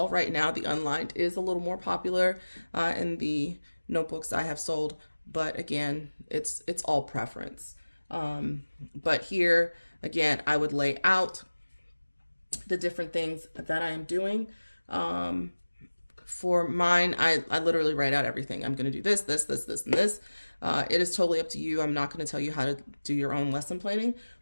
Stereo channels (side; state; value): both; inverted; correlation -1.00